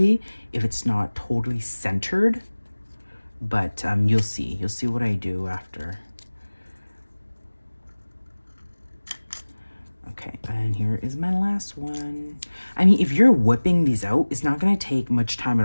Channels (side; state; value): both; inverted; correlation -1.00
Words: if it's not totally centered, but you'll see what I do after. Okay, and here is my last one. I mean, if you're whipping these out, it's not gonna take much time